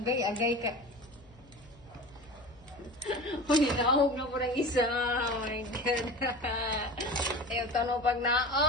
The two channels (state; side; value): noise; left; hum, 26 dB below the sound